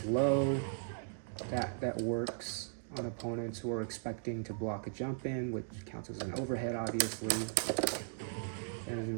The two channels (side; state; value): left; silent; digital silence